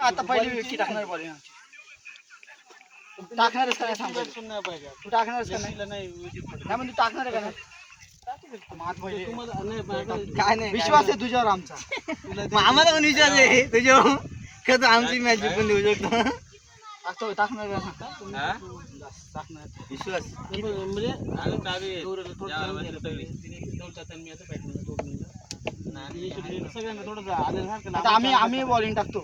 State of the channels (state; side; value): identical; both; correlation 1.00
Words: आता पहिली विकेट टाकणार बॉलिंग आमची. टाकणारच का नाही सांग पहिले. तू टाकणारच का नाही? नाही म्हणजे टाकणार आहे का नाही? काय नाही विश्वास आहे तुझ्यावर आमचा. आम्हाला पण विश्वास आहे तुझ्यावर. कसं आमची मॅच जिंकून देऊ शकतो. टाकणार का नाही? विश्वास आता आम्ही बॉलिंग